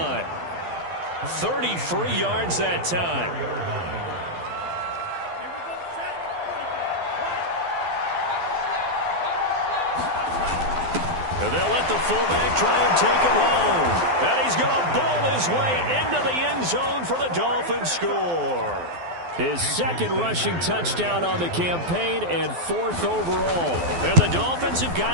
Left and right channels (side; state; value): left; late; 12 ms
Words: 33 yards that time. And they'll let the fullback try and take him home. And he's going to bowl his way into the end zone for the Dolphins score. His 2nd rushing touchdown on the campaign and 4th overall. And the Dolphins have